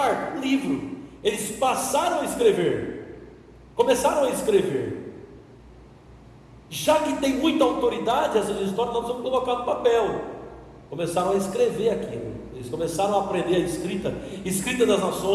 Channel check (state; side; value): identical; both; correlation 1.00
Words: livro. Eles passaram a escrever, começaram a escrever. Já que tem muita autoridade essas histórias, nós vamos colocar no papel. Começaram a escrever aquilo. Eles começaram a aprender a escrita das